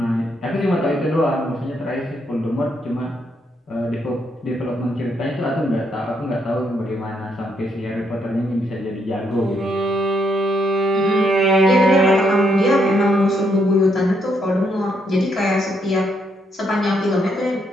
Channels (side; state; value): both; normal; correlation 0.75